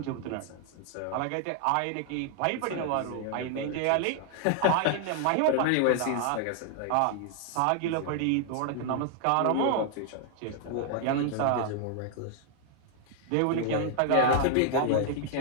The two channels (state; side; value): different; both; correlation 0.00